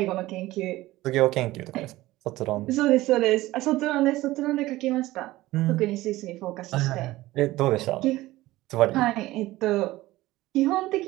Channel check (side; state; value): left; quieter; 17.6 dB